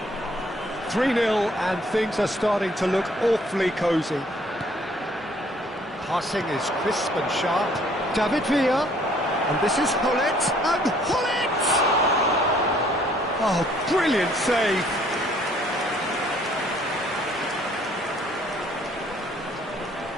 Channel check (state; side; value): normal; both; correlation 0.61